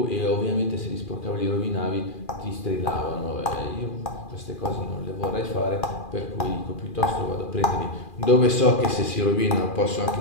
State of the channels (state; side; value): late; right; 2.4 ms